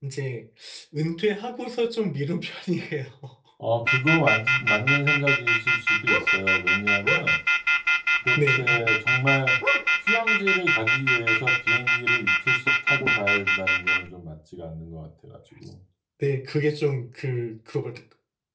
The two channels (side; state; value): both; identical; correlation 1.00